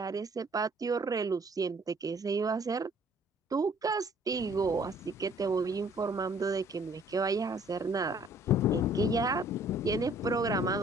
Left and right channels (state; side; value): normal; both; correlation 0.58